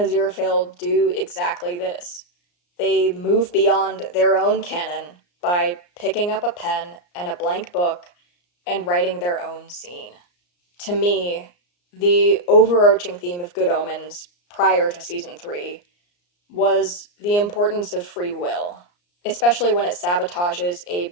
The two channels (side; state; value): right; late; 34 ms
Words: do exactly this. They move beyond their own canon by picking up a pen and a blank book and writing their own scene. To me, the overarching theme of Good Omens prior to season 3 was the importance of free will, especially when it sabotages a